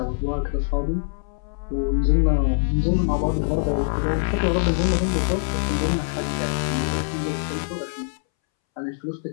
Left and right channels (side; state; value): right; silent; 63 dB below the other